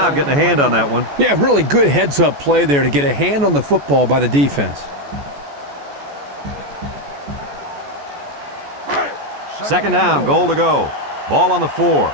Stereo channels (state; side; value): late; left; 14 ms